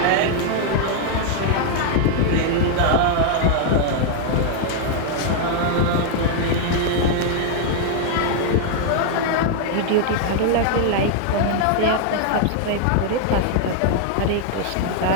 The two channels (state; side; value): different; both; correlation 0.00